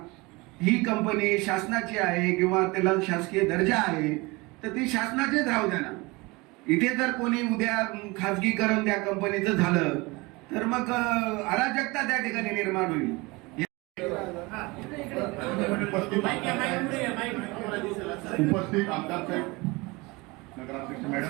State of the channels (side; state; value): left; quieter; 24.4 dB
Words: ही कंपनी शासनाची आहे किंवा त्याला शासकीय दर्जा आहे तर ती शासनाचेच राहू द्या ना. इथे जर कोणी उद्या खाजगीकरण त्या कंपनीचं झालं तर मग अराजकता त्या ठिकाणी निर्माण होईल. उपस्थित आमदार साहेब, नगराध्यक्ष